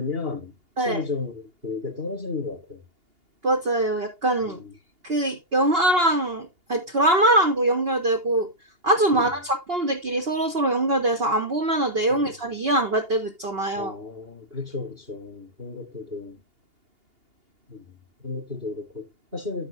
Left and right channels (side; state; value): left; late; 2.8 ms